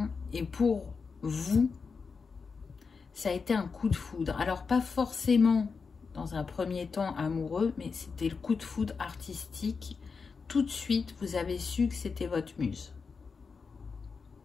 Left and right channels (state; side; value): quieter; right; 5.1 dB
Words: et pour vous, ça a été un coup de foudre. Alors, pas forcément dans un premier temps amoureux, mais c'était le coup de foudre artistique. Tout de suite, vous avez su que c'était votre muse.